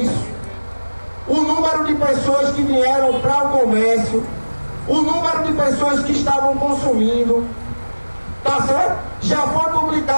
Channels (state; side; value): inverted; both; correlation -1.00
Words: O número de pessoas que vieram para o comércio, o número de pessoas que estavam consumindo, tá certo? Já foi